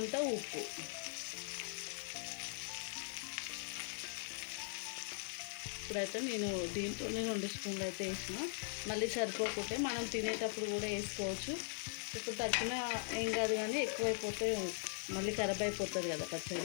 ఉప్పు. ఇప్పుడైతే నేను దీంట్లోనే 2 స్పూన్లు అయితే వేసిన, మళ్ళీ సరిపోకుంటే మనం తినేటప్పుడు కూడా వేసుకోవచ్చు. ఇప్పుడు తగ్గిన ఏం కాదు, కానీ ఎక్కువైపోతే మళ్ళీ ఖరాబ్ అయిపోతుంది కదా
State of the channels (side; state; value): right; silent; 51 dB below the other